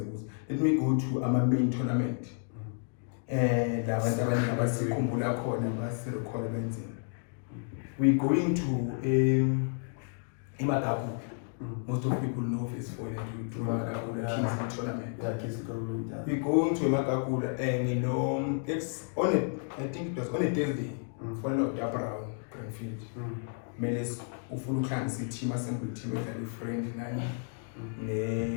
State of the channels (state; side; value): silent; right; 57 dB below the other